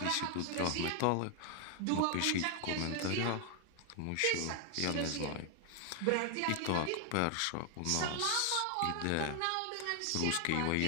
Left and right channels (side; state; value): both; different; correlation 0.00